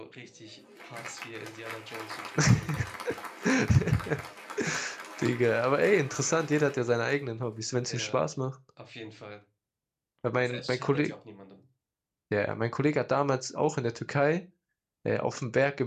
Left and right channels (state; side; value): identical; both; correlation 1.00